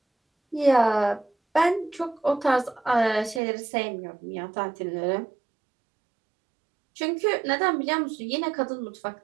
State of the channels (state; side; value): drops out; left; at 3.4 s